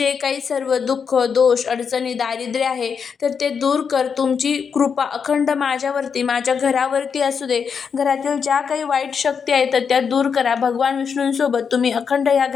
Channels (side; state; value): right; quieter; 6.4 dB